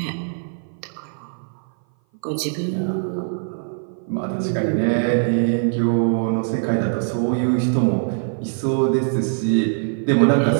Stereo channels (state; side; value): silent; left; 57 dB below the other